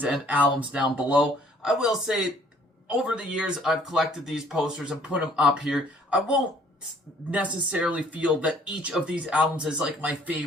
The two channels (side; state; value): both; normal; correlation 0.59